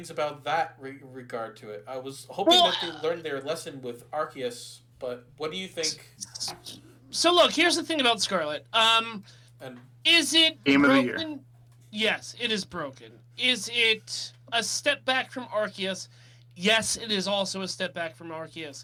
about that regard to it. I was hoping Well, that they learned their lesson with Arceus, but what do you think? so look, here's the thing about Scarlet. And Is it Game of the broken? year. Yes, it is broken. Is it a step back from Arceus? Yes, it is also a step back from Arceus.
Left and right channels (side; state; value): both; identical; correlation 1.00